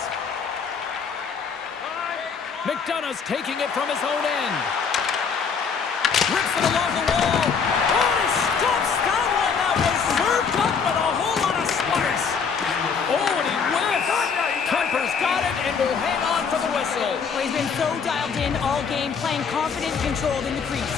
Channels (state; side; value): quieter; right; 6.0 dB